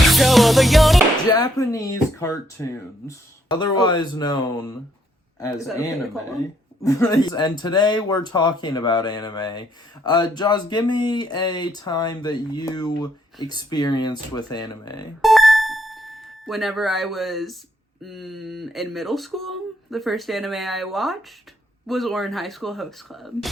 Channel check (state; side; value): normal; both; correlation 0.71